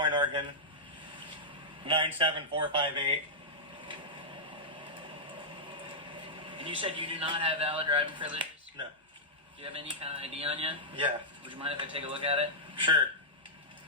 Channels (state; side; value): normal; both; correlation -0.10